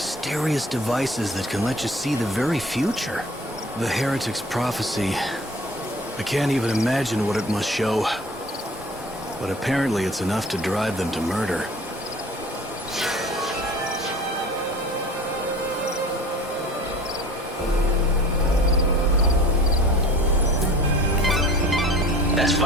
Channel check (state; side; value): normal; both; correlation 0.45